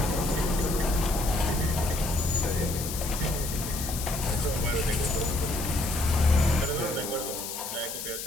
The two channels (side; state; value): left; noise; hiss, 7 dB below the sound